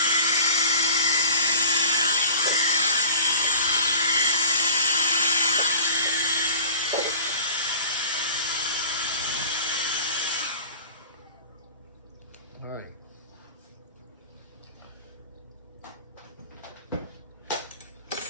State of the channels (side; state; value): both; inverted; correlation -0.38